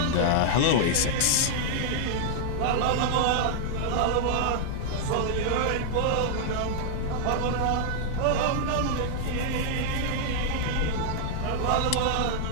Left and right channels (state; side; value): different; both; correlation -0.01